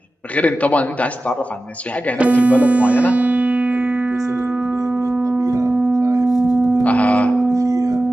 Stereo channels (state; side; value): normal; both; correlation 0.95